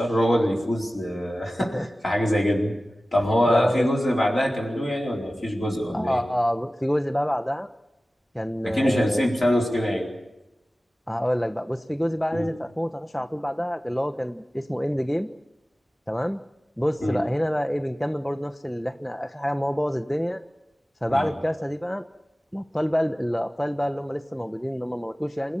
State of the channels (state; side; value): normal; both; correlation 0.96